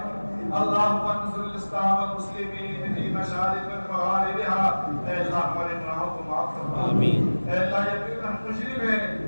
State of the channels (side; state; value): both; inverted; correlation -1.00